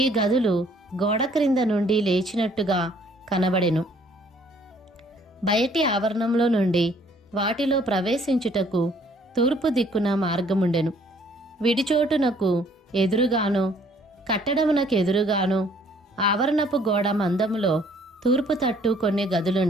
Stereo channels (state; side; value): normal; both; correlation 0.61